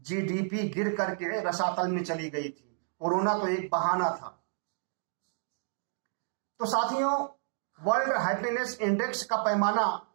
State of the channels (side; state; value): left; silent; digital silence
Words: गिर करके रसातल में चली गई थी। कोरोना तो एक बहाना था। तो साथियों, वर्ल्ड हैप्पीनेस इंडेक्स का पैमाना